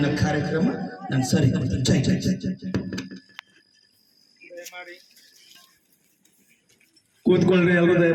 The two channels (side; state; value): both; identical; correlation 1.00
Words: ಕಾರ್ಯಕ್ರಮ ನಾನು ಸರಿ ಕೊಡ್ತೇನೆ. ಜೈ ಜೈ ಜೈ ಜೈ ಜೈ. ಕೂತ್ಕೊಳ್ರಿ, ಎಲ್ಲರೂ